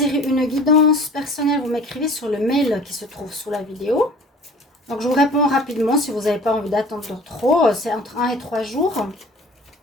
une guidance personnelle, vous m'écrivez sur le mail qui se trouve sous la vidéo. Donc je vous réponds rapidement si vous n'avez pas envie d'attendre trop. C'est entre 1 et 3 jours.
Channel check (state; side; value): normal; both; correlation 0.46